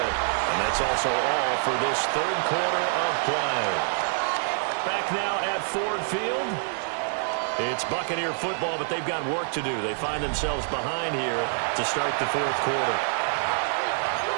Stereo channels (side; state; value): left; silent; digital silence